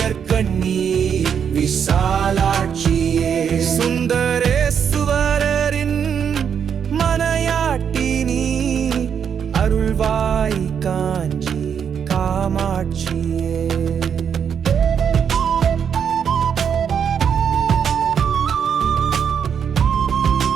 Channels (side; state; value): left; quieter; 7.6 dB